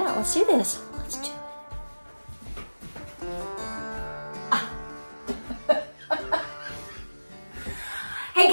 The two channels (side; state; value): both; inverted; correlation -1.00